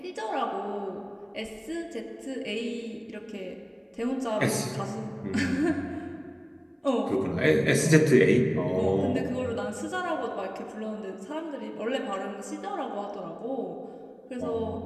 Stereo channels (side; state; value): both; identical; correlation 1.00